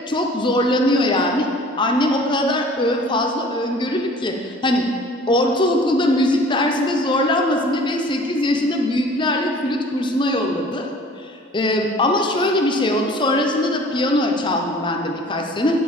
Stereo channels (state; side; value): normal; both; correlation 0.48